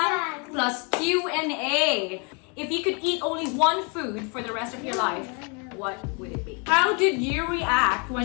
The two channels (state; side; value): quieter; right; 34.6 dB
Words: plus Q&A. If you could eat only one food for the rest of your life, what would it be? How did you react